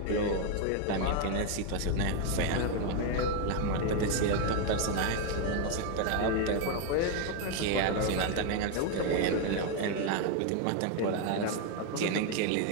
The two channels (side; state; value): both; different; correlation 0.01